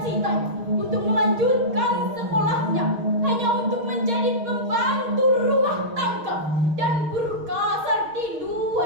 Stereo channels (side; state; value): left; late; 6.4 ms